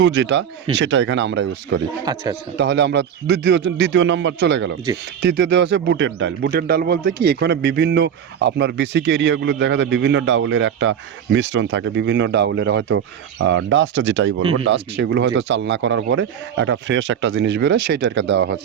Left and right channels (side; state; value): left; quieter; 8.6 dB